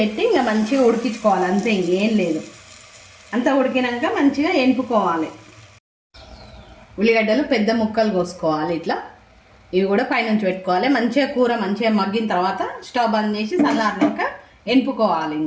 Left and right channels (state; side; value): identical; both; correlation 1.00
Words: ఇంకా మంచిగా ఉడికించుకోవాలి, అంతే, ఇంకేం లేదు. అంతా ఉడికినాక మంచిగా ఎనుపుకోవాలి. ఉల్లిగడ్డలు పెద్ద ముక్కలు కోసుకోవాలి ఇట్లా. ఇవి కూడా పైనుంచి పెట్టుకోవాలి. మంచిగా కూర మంచిగా మగ్గిన తర్వాత స్టవ్ బంద్ చేసి చల్లారినాక ఎనుపుకోవాలి.